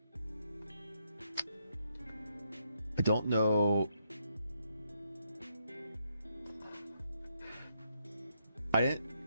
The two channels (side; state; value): both; inverted; correlation -0.75